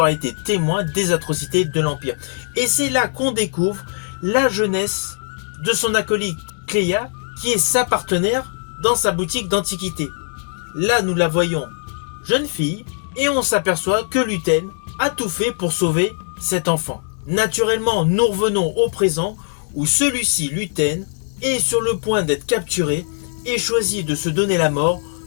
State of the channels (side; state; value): right; silent; digital silence